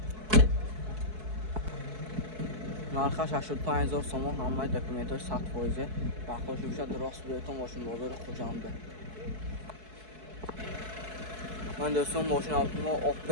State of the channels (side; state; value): left; late; 4.6 ms